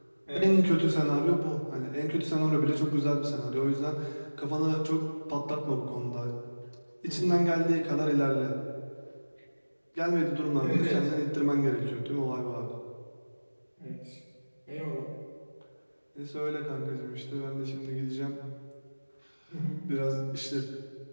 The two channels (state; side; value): inverted; both; correlation -1.00